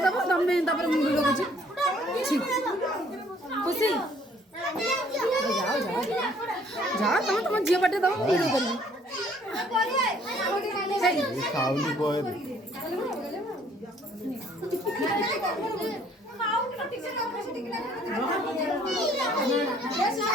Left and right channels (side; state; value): both; normal; correlation 0.60